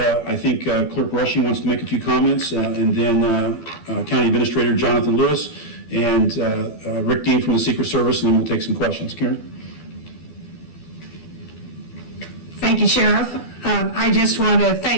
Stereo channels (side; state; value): right; late; 12 ms